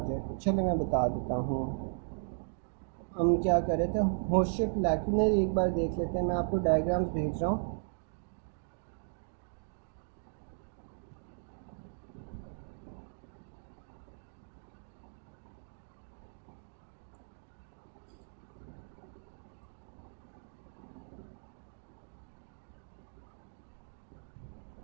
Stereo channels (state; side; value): silent; left; digital silence